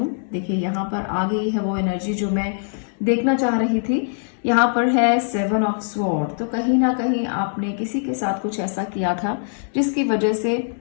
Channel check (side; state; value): right; silent; 64 dB below the other